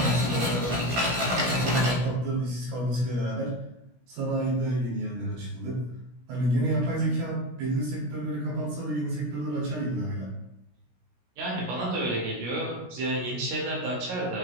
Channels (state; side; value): late; left; 16 ms